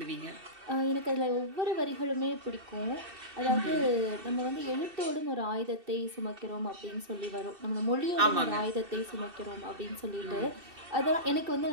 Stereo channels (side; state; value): left; late; 2.6 ms